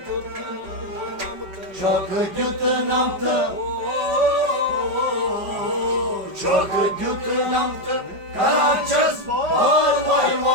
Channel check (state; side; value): late; left; 5.2 ms